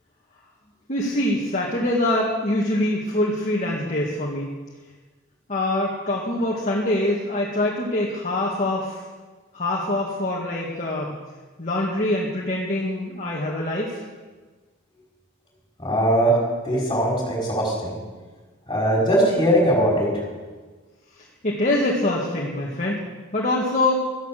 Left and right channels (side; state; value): both; normal; correlation 0.34